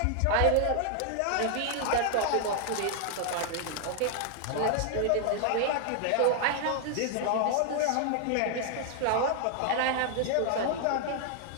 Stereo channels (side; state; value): both; different; correlation 0.00